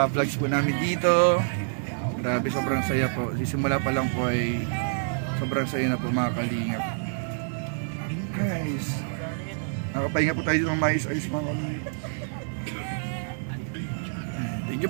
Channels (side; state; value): left; silent; digital silence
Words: vlogs po namin dito. Grabe, sobrang saya po. Simula pa lang po ay sobrang saya na po mga kalingap. Guys, nakapahinga po tayo dito ng mais-ayos mga kalingap. Thank